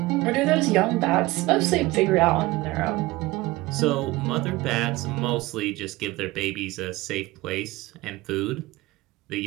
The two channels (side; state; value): left; quieter; 19.8 dB